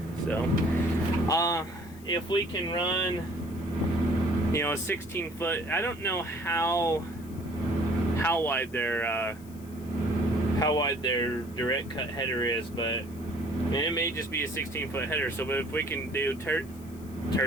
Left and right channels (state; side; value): noise; left; hiss, 23 dB below the sound